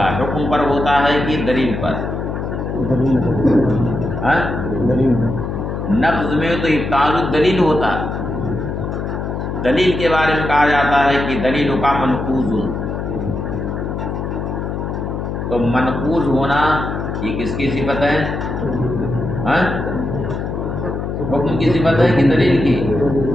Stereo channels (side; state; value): left; noise; hum, 4 dB below the sound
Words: حکم پر ہوتا ہے کہ دلیل پر؟ نقض میں تو ابطال الدلیل ہوتا ہے. دلیل کے بارے میں کہا جاتا ہے کہ دلیل کا منقوض. تو منقوض ہونا یہ کس کی صفت ہے؟ حکم کی صفت ہے کہ دلیل کی؟